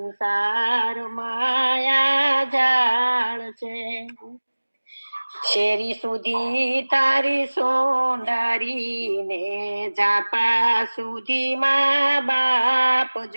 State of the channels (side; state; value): both; inverted; correlation -1.00